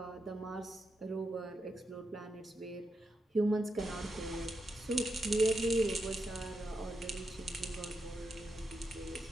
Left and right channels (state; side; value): normal; both; correlation 0.85